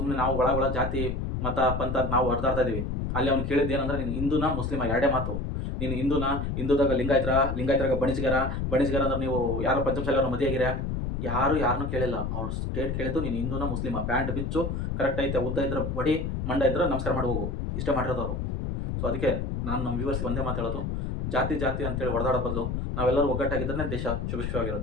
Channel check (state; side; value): noise; left; rumble, 2 dB below the sound